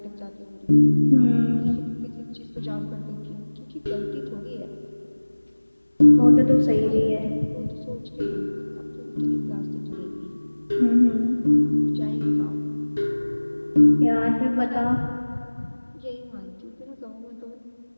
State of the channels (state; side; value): inverted; both; correlation -1.00